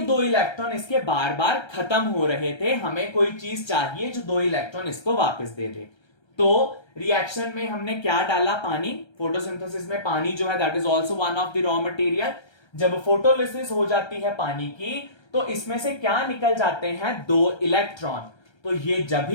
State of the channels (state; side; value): late; right; 1.3 ms